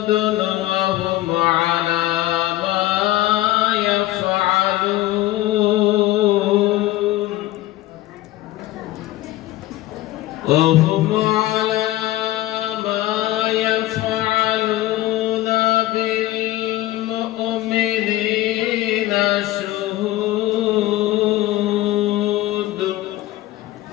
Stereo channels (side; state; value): right; quieter; 16.1 dB